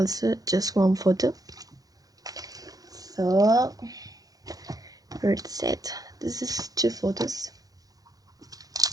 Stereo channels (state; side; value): late; left; 0.18 ms